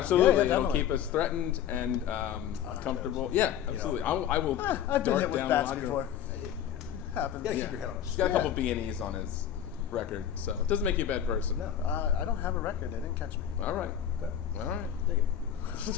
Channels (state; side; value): quieter; right; 9.9 dB